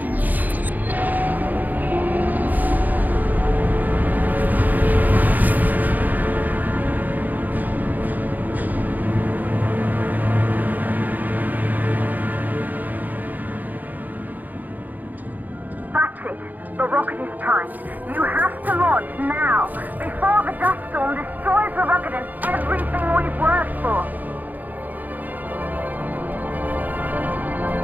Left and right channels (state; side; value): late; left; 0.083 ms